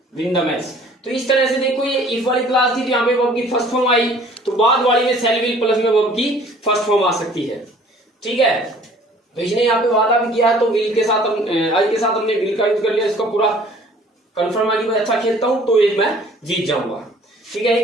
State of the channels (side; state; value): both; normal; correlation 0.53